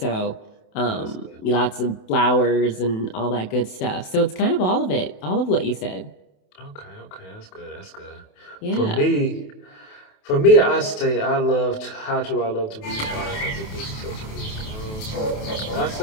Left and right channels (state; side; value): late; right; 28 ms